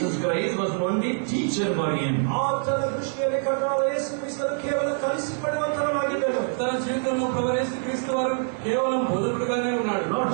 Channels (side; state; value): left; silent; 59 dB below the other